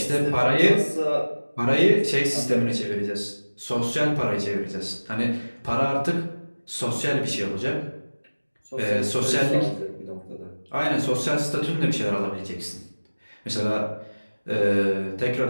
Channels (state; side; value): inverted; both; correlation -1.00